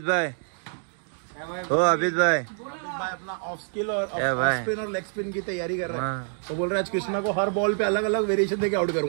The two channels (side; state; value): left; silent; 61 dB below the other